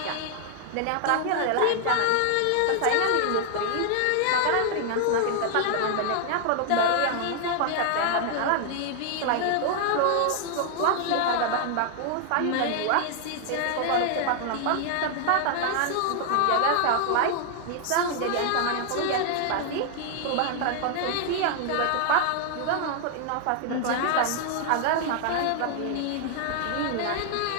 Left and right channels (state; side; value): different; both; correlation 0.00